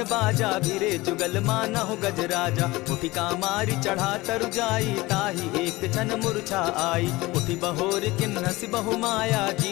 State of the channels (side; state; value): right; quieter; 20.4 dB